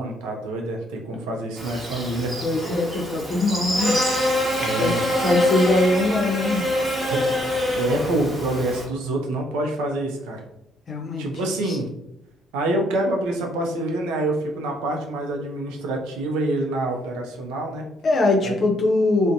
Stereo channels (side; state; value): both; normal; correlation 0.69